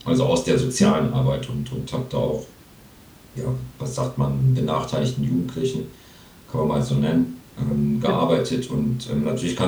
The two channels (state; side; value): identical; both; correlation 1.00